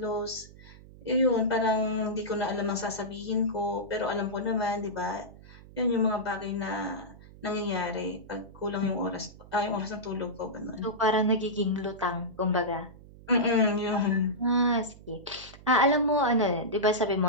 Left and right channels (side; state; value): right; noise; hum, 20 dB below the sound